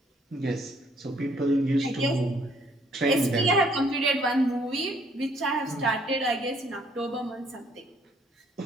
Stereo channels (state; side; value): normal; both; correlation 0.65